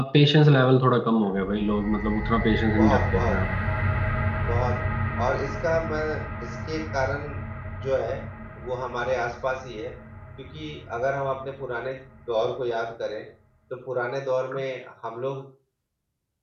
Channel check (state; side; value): identical; both; correlation 1.00